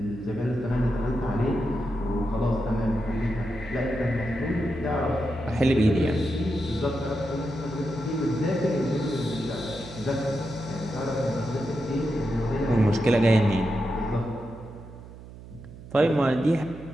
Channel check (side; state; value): right; noise; hum, 16 dB below the sound